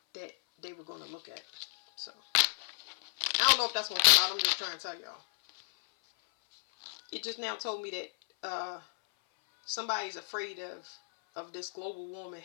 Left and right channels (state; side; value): silent; right; 56 dB below the other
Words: that they were going to look at. So I don't know if that's going to come out. I'm just trying to tell y'all. It just now told me that somebody's afraid of this global warming